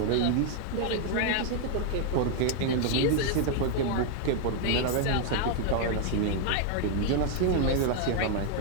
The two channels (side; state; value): both; different; correlation 0.00